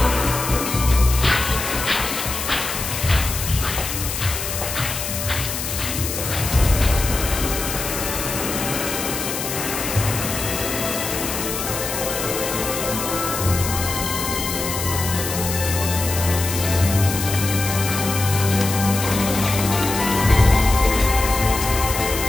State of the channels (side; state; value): left; noise; hiss, 5 dB below the sound